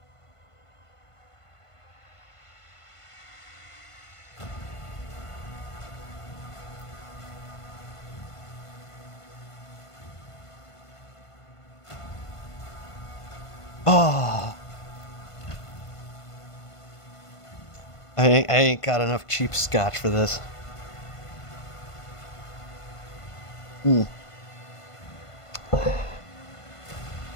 Oh. I ain't got enough cheap scotch for this. Hmm.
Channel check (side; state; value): right; late; 1.5 ms